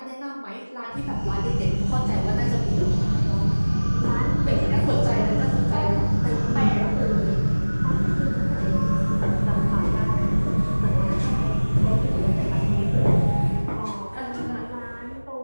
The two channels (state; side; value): inverted; both; correlation -1.00